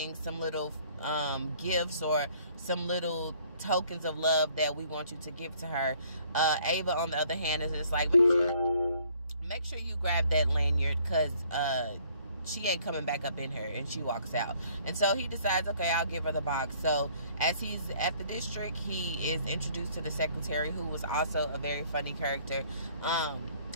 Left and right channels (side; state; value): both; inverted; correlation -0.60